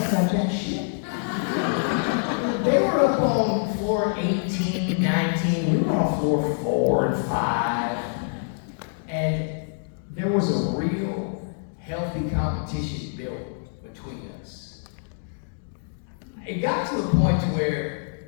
got that shit. They were up on floor 18, 19, we were on floor 4 and 5, and there was a real healthy competition built between us. It got to the point to where,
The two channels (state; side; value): silent; right; digital silence